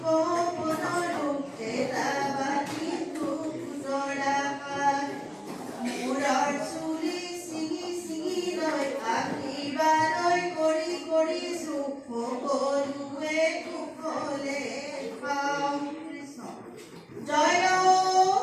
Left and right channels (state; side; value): identical; both; correlation 1.00